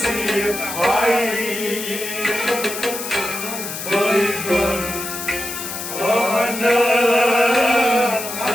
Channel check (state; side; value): noise; left; hiss, 7 dB below the sound